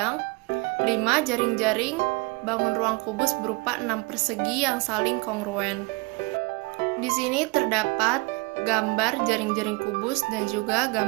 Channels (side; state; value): left; quieter; 26.3 dB